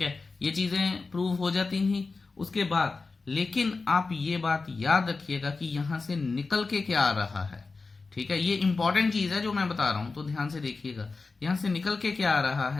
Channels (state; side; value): quieter; right; 4.0 dB